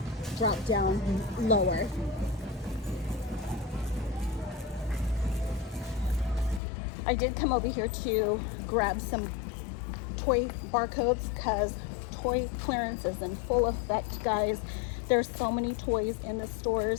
dropped down lower. I did come over here to grab some toy barcodes because toy clearance is in full effect, guys. There's so many toys in the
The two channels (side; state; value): right; drops out; at 6.6 s